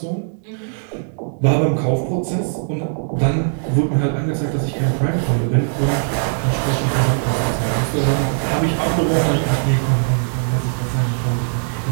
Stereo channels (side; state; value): left; silent; digital silence